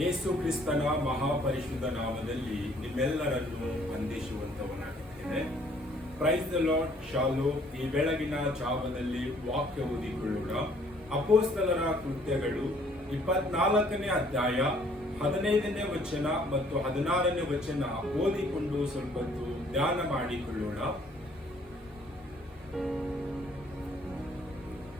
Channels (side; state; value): both; normal; correlation 0.61